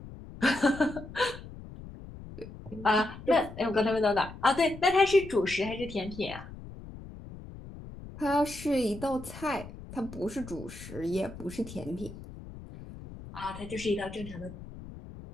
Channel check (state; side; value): noise; left; rumble, 14 dB below the sound